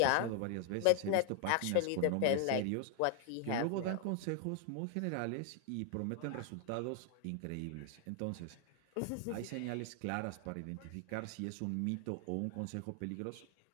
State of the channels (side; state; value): both; different; correlation 0.00